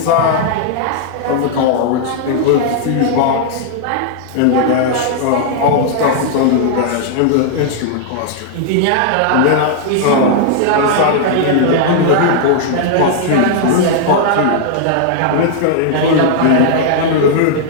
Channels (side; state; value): both; different; correlation -0.01